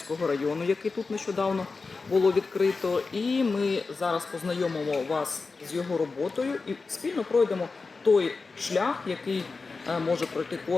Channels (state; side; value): quieter; right; 4.2 dB